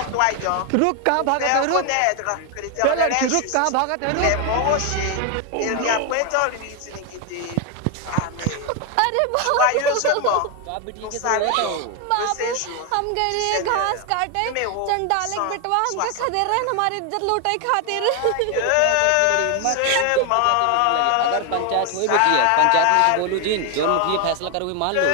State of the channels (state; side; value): different; both; correlation 0.01